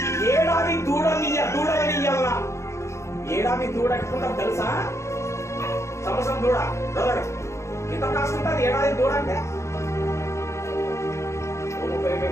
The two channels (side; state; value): right; late; 0.14 ms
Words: ఏడాది దూడలనియ్యల్లా. ఏడాది దూడ ఎట్టుకుంటాం తెలుసా? సంవత్సరం దూడ ఎంత కాస్ట్ ఉంటుంది ఏడాది దూడ అంటే?